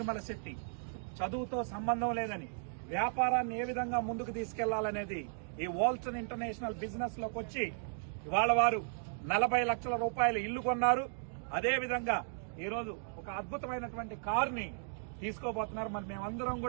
శెట్టి చదువుతో సంబంధం లేదని వ్యాపారాన్ని ఏ విధంగా ముందుకు తీసుకెళ్లాలనేది ఈ వాల్టన్ ఇంటర్నేషనల్ బిజినెస్ లోకి వచ్చి ఇవాళ వారు 40 లక్షల రూపాయలు ఇల్లు కొన్నారు. అదేవిధంగా ఈరోజు ఒక అద్భుతమైనటువంటి కారుని తీసుకోబోతున్నారు. మరి మేమందరం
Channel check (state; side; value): silent; left; digital silence